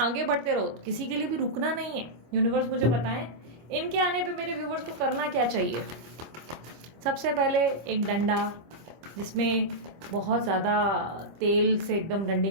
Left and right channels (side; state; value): left; late; 25 ms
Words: आगे बढ़ते रहो, किसी के लिए भी रुकना नहीं है। यूनिवर्स मुझे बताएं इनके आने पे मेरे व्यूवर्स को करना क्या चाहिए। सबसे पहले एक डंडा जिसमें बहुत ज्यादा तेल से एकदम डंडे